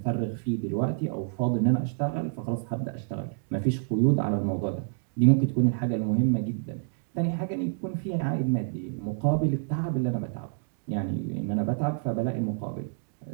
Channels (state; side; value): silent; left; digital silence